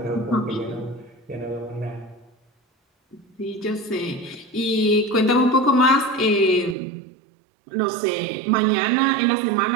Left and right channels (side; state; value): left; drops out; at 6.8 s